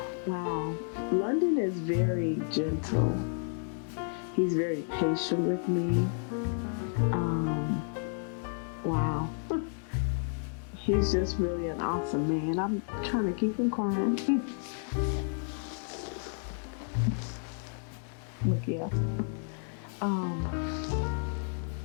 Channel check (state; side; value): silent; right; 57 dB below the other